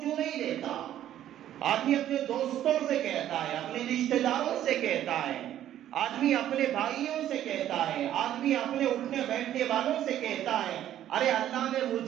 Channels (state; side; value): quieter; left; 11.8 dB